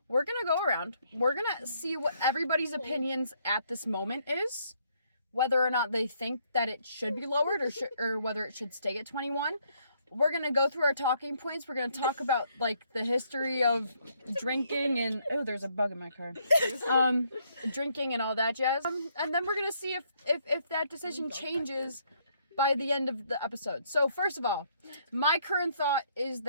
We're gonna go around. We're gonna see what everybody's opinions at this moment is, whether or not they think that it should be lowered or whether it should stay at 21. We're gonna go through our talking points. We're gonna talk about like the history of drinking and there's a bug in my car. Drinking and all that jazz. And then we're gonna see if that decision changes by the end of the episode. So first of all, my current thought is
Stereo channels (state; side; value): inverted; both; correlation -0.70